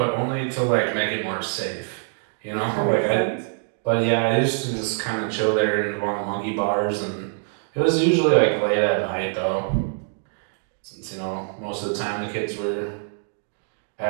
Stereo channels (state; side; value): silent; left; digital silence